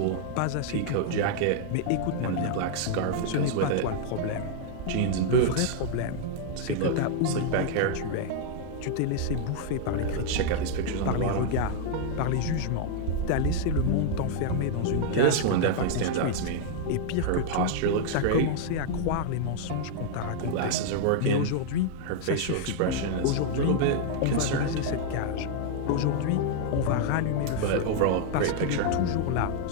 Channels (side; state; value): both; different; correlation 0.00